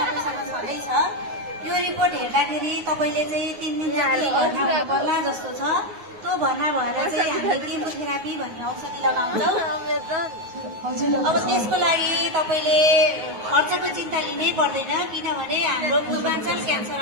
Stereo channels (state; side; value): late; left; 9.5 ms